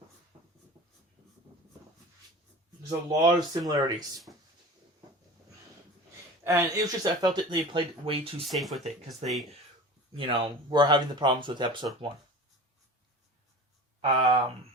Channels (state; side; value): normal; both; correlation 0.36